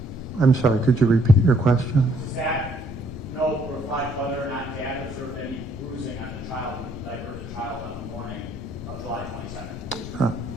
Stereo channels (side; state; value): both; normal; correlation 0.66